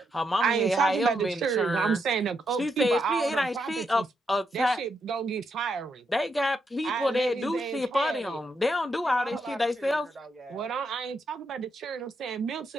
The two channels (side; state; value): both; normal; correlation 0.81